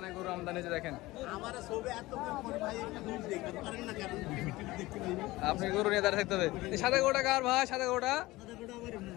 গরু আমদানি হয়েছে দেখেন। আপনি গরু নিয়ে দাঁড়িয়ে থাকতে হবে। এই সাদা গরুটা কার ভাই? সাদা গরুটা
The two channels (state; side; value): quieter; right; 19.3 dB